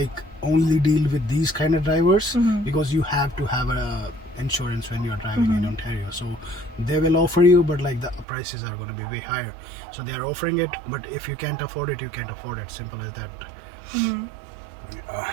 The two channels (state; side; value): drops out; left; at 8.2 s